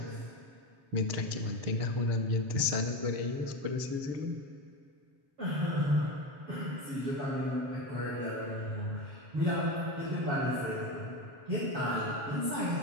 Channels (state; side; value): late; left; 7.4 ms